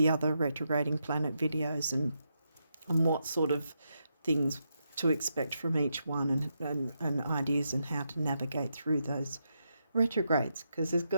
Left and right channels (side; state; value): both; inverted; correlation -0.83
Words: retrograding planet videos and what sort of things to expect from each one, and ideas and how to navigate through those retrogrades, because there's